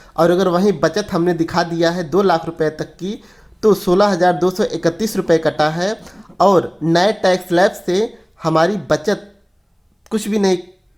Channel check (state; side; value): identical; both; correlation 1.00